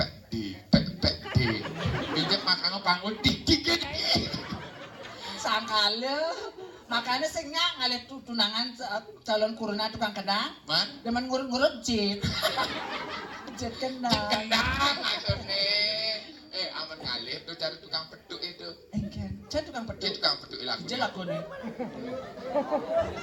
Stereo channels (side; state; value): both; identical; correlation 1.00